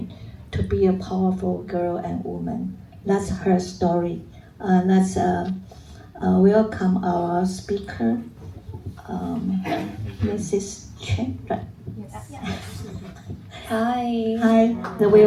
to be a powerful girl and woman. That's her story. Let's welcome our speaker, Mrs. Chen. Right? Hi. Hi.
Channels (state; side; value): identical; both; correlation 1.00